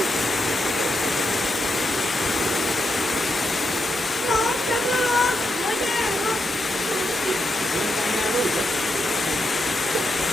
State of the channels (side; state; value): both; normal; correlation 0.83